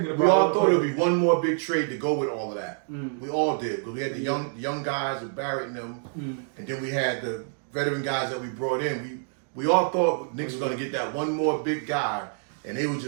about. We all thought there would be one more big trade to go with all of that. We all did, because we had the young guys with Barrett and them, and then we had the veteran guys that we brought in. We all thought Knicks was going to get that one more big guy, and they were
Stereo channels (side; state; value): left; silent; digital silence